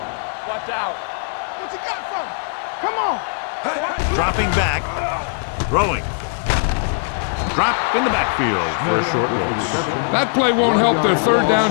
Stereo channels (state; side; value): silent; right; digital silence